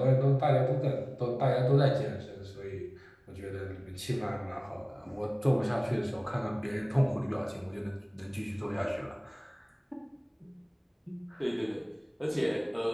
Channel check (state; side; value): identical; both; correlation 1.00